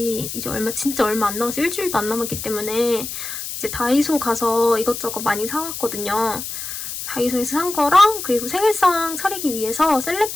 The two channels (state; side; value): noise; left; hiss, 7 dB below the sound